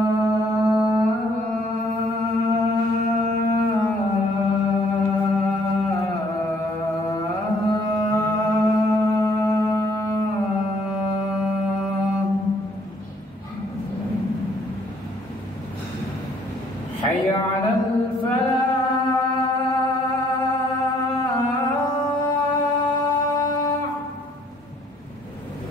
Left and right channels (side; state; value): both; normal; correlation 0.63